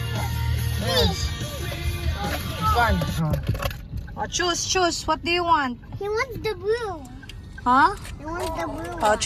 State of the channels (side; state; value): both; identical; correlation 1.00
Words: Yes. This one. Oh, choose. What do you want? He wants the blue. Huh? He wants the blue. Oh,